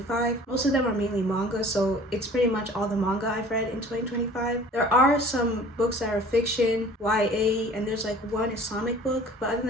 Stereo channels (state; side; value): normal; both; correlation 0.48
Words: Most of them are mainly manga, so it's pretty much all the manga I've read in 2025. There are some books that are fiction, YA, and there's like one Islamic book, but other